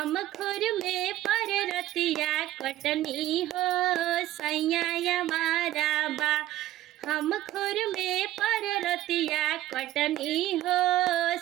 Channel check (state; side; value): quieter; left; 14.4 dB